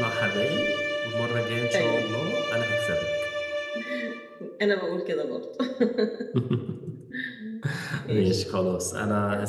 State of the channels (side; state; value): both; identical; correlation 1.00